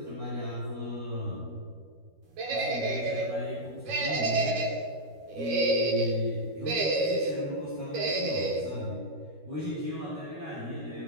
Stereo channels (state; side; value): late; left; 13 ms